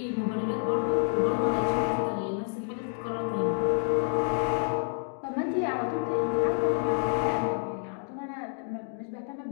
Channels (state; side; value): silent; right; 59 dB below the other